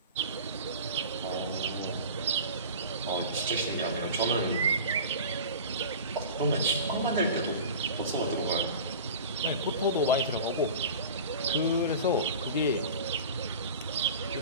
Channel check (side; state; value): both; inverted; correlation -0.35